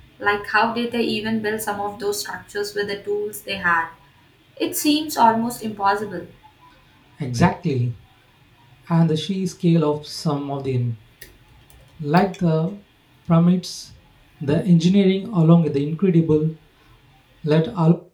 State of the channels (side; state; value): both; identical; correlation 1.00